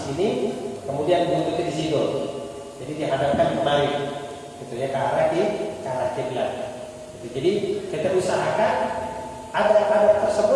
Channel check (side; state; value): both; identical; correlation 1.00